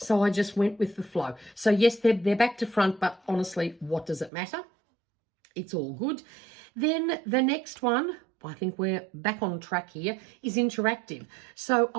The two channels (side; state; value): left; drops out; at 4.3 s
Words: I just went with the flow. So yes, they're back to front, but honestly, what does it matter? It's all good. Then the next one, I think we're back on track here, is interactive. So